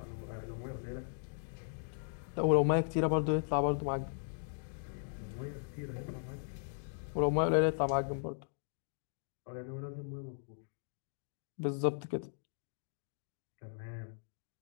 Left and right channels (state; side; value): silent; right; digital silence